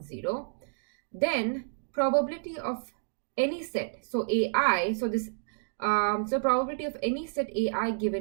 Then probability of any set. So AI. So this. So probability of any set AI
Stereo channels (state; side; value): silent; left; digital silence